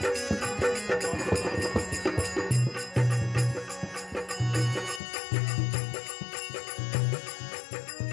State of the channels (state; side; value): drops out; right; at 5.0 s